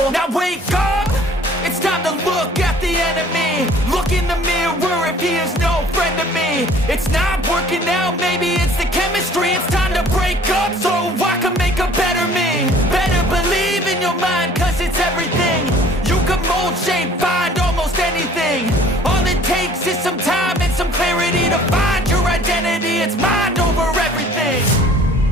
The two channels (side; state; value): both; normal; correlation 0.52